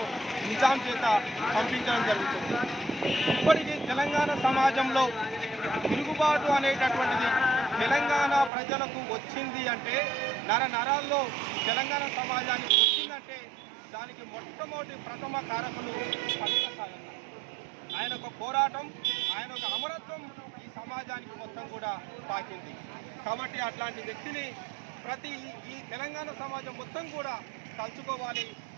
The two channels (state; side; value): drops out; left; at 8.5 s